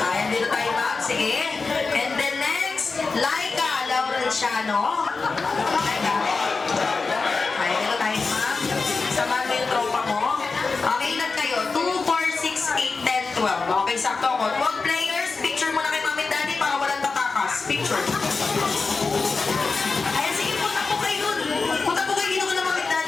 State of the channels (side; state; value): right; quieter; 4.3 dB